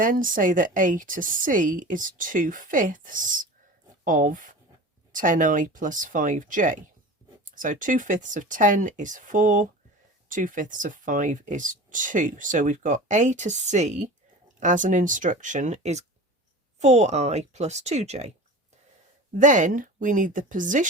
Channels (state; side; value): normal; both; correlation 0.35